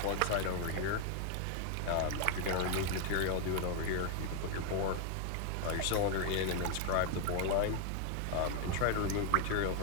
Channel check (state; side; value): different; both; correlation 0.00